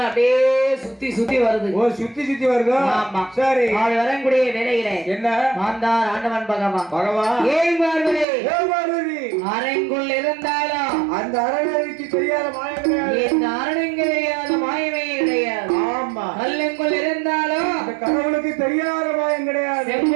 அப்படியே சுத்தி சுத்தி வருது. ஓ, சுத்தி சுத்தி வருது. ஆமா. சரி, அவள் வரக்கூடிய வேலையில என்ன மாந்தார் ஆண்டவன் பகவான் ஏன் பார்வதி அரங்குள் இருந்தாலும் அந்த அரணுக்கு தெரியாத மாயம் கிடையாது. இந்த அரணுக்கு தெரியாத மாயமே கிடையாது. ஆமா. கல்லுக்குள் இருந்தாலும் அந்த கடவுளுக்கு தெரியாத மாயம் கிடையாது.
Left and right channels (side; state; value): left; drops out; at 8.2 s